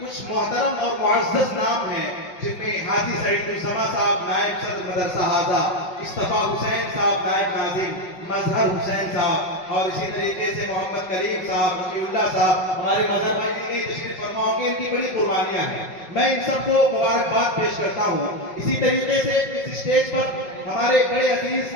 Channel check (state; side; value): late; right; 5.4 ms